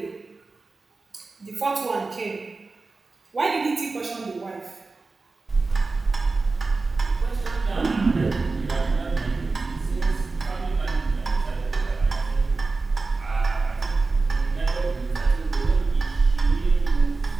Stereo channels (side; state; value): left; quieter; 3.8 dB